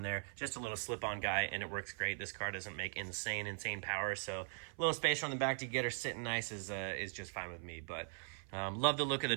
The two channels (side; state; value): left; silent; 51 dB below the other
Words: there, just a little slip-on guy, and it works great. This car doesn't make insane power, so a little spacer on the back to get her sitting nice is just fine with me. But love the look of the